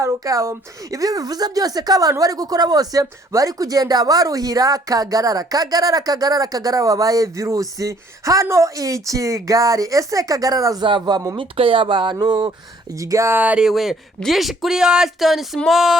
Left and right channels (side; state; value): both; normal; correlation 0.61